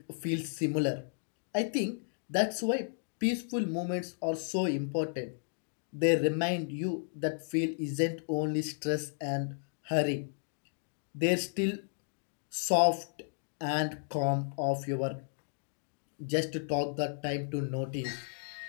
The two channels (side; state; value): right; silent; digital silence